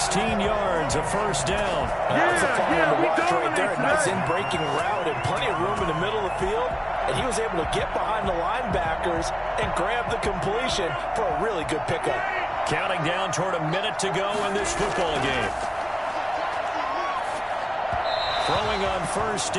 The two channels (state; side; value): identical; both; correlation 1.00